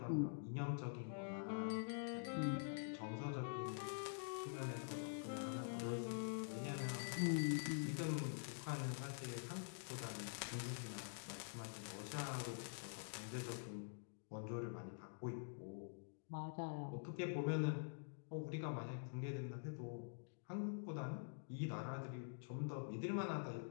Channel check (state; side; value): silent; right; digital silence